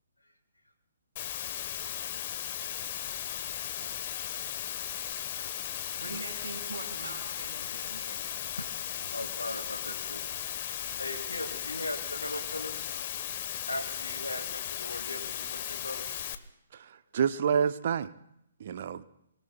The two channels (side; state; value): both; inverted; correlation -0.58